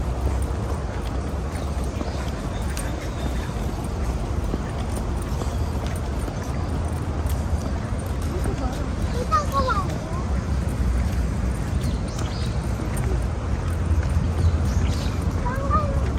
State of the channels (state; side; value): identical; both; correlation 1.00